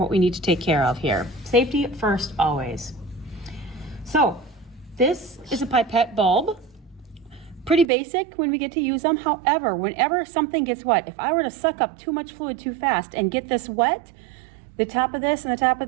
we need to take care of here. Safety first, always. So this is a pipette bulb. Pretty basic when we get to use them. However, whenever something gets wet, if I were to suck up too much fluid too fast and get this wet, the top of this and the top of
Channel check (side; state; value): left; drops out; at 7.9 s